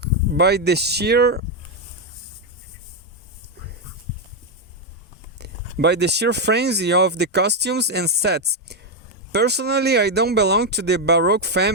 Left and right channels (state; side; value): normal; both; correlation 0.04